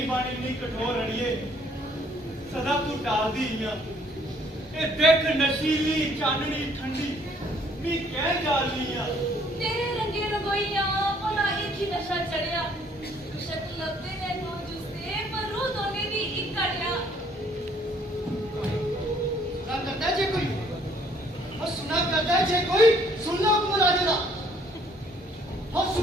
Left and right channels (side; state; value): both; normal; correlation 0.62